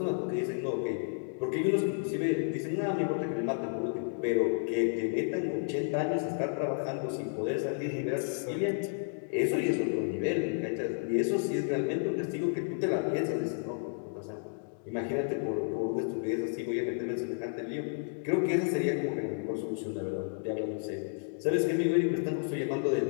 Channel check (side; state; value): right; silent; digital silence